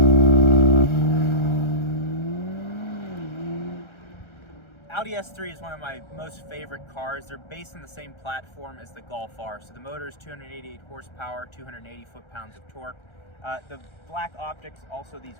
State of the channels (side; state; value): right; late; 1.3 ms